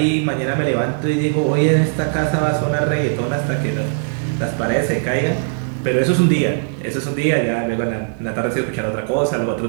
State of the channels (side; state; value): left; silent; digital silence